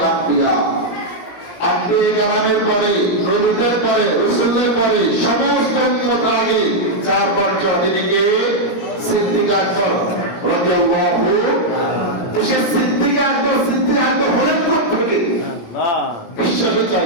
আম্বিয়া, আম্বিয়া কেরামের পরে, নবীদের পরে, রাসূলের পরে সমস্ত উম্মত আগে যার পর্যায়ে তিনি কে? সিদ্দিক আকবর রাদিয়াল্লাহু আনহু। সে সিদ্দিক আকবর হলেন কোথা থেকে? বিশ্বাসের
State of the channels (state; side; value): late; right; 17 ms